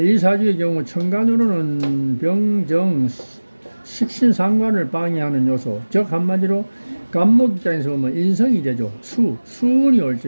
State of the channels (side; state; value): both; inverted; correlation -1.00